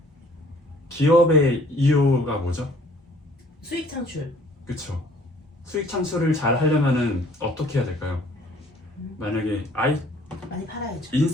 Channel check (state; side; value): normal; both; correlation 0.57